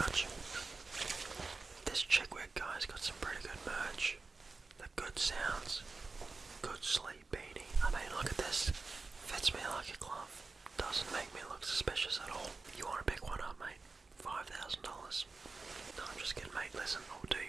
you. This Chickwick guy's got some pretty good merch. The good sounds. Good sleep beanie. I mean, look at this. Fits me like a glove. Doesn't make me look suspicious at all. You want to pick one up, mate? $5,000. No, I'm just kidding, mate. Listen, I'll do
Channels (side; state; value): left; quieter; 3.9 dB